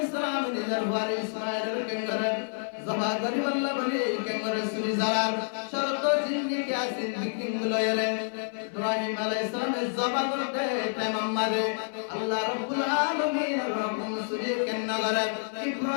সালাম নিজের বাড়ি ইসমাঈলের কেঙ্গরে জবা করি আল্লাহ বলে কেঙ্গরে সুরি জালাল শরত জিন্দি কে আসিন বিকিং লয়রে ইব্রাহিম আলাইহিস সালাম জবা করতে তামাম্মাদে আল্লাহ রাব্বুল আলামিন রকম সুরি কেঙ্গরে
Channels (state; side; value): silent; right; 56 dB below the other